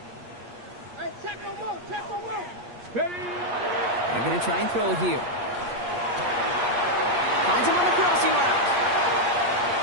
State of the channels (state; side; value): late; left; 8.5 ms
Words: Hey, check him out, check him out. Ready. They're going to try and throw it here. Finds him on the crossing route.